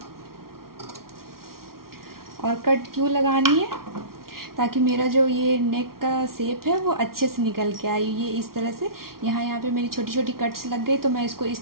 और कट क्यों लगानी है? ताकि मेरा जो ये नेक का शेप है वो अच्छे से निकल के आए। ये इस तरह से यहाँ पे मेरी छोटी छोटी कट्स लग गई तो मैं इसको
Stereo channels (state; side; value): late; left; 0.93 ms